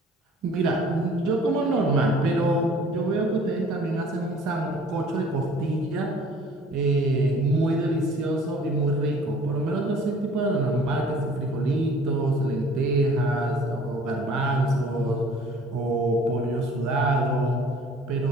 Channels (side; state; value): both; normal; correlation 0.51